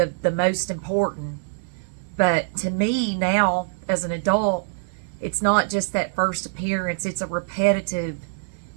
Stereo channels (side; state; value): left; silent; digital silence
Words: most important. But to me now, as an adult, it's not just that first appearance, it's a repetitive,